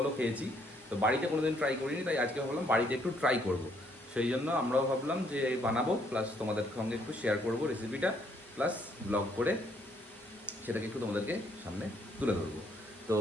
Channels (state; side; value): normal; both; correlation 0.69